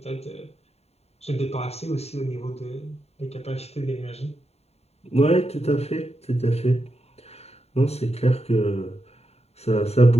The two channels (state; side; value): late; right; 0.30 ms